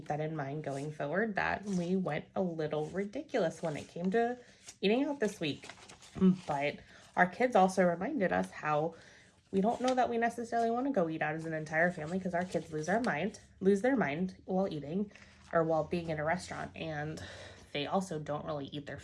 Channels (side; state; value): both; identical; correlation 1.00